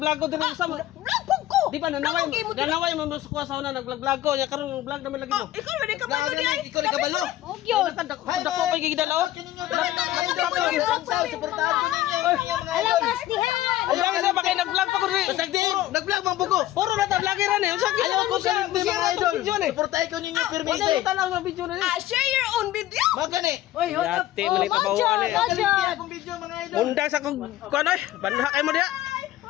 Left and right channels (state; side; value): quieter; right; 14.4 dB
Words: ko dire sa mo? Di ba nanaway mo musukwa sa una nag-vlog ko nya karon vlog naman lagi mo. Ikaw na ka ba di ay? Ikaw na kabalo. Dako pa gigidalaw. Suportahan ko ninyo mga idol. Alamas dihan. Ay lang sa ba kay nag-vlog pa ko dire. Basag di, nag-vlog mang bugo. Puro na ta vloggeran eh. Unsa Ayaw ko sa mga idol. Suportahan ko ninyo pirmi Wala ite. tanaw sa video na ni. Share your own video. Magani. Yati man ita bawaan eh. Kalimpi akong video mga idol. Undang sa kung kuan oy, banha kay mo diha.